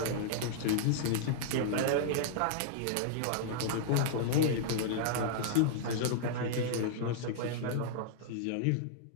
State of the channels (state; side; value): different; both; correlation -0.01